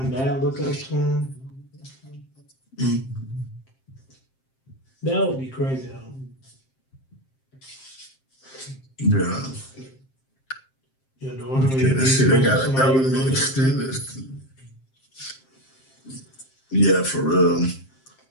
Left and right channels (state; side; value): late; right; 7.6 ms